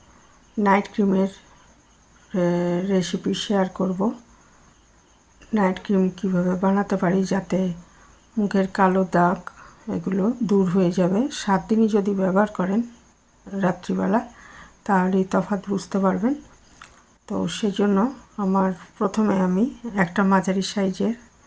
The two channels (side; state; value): both; identical; correlation 1.00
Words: নাইট ক্রিমের রেসিপি শেয়ার করব। নাইট ক্রিম কীভাবে বানাতে পারি যাতে মুখের কালো দাগ এগুলো দূর হয়ে যাবে। 7 দিনই যদি ব্যবহার করেন রাত্রিবেলা, তাহলেই তফাৎ বুঝতে পারবেন। তো সেজন্য প্রথমে আমি একটা মাঝারি সাইজের